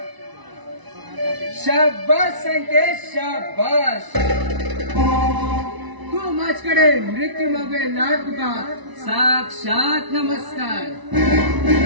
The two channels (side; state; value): left; late; 1.0 ms